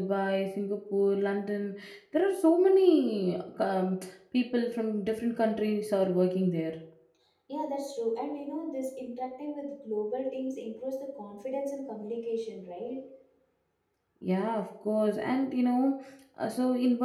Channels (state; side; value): identical; both; correlation 1.00